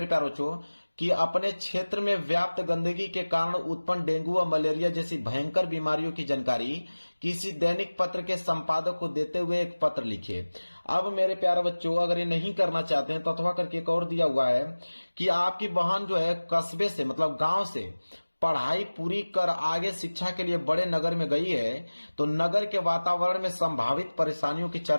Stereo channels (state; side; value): inverted; both; correlation -1.00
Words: प्यारे बच्चों कि अपने क्षेत्र में व्याप्त गंदगी के कारण उत्पन्न डेंगू और मलेरिया जैसी भयंकर बीमारियों की जानकारी किसी दैनिक पत्र के संपादक को देते हुए एक पत्र लिखिए। अब मेरे प्यारे बच्चों, अगर ये नहीं करना चाहते हैं तो अथवा करके एक और दिया हुआ है कि आपकी बहन जो है कस्बे से मतलब गांव से पढ़ाई पूरी कर आगे शिक्षा के लिए बड़े नगर में गई है तो नगर के वातावरण में संभावित परेशानियों की